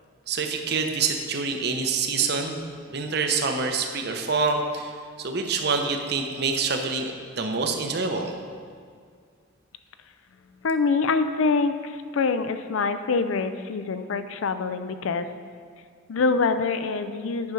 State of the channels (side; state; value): both; normal; correlation 0.00